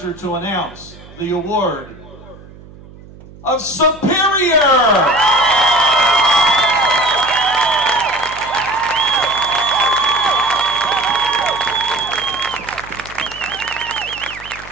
to announce the award of Superior.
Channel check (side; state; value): right; noise; hum, 20 dB below the sound